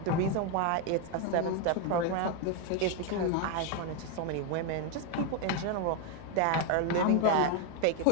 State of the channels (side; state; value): both; different; correlation 0.01